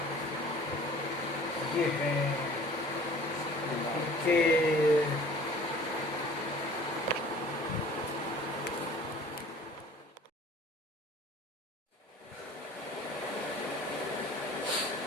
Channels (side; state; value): both; normal; correlation 0.47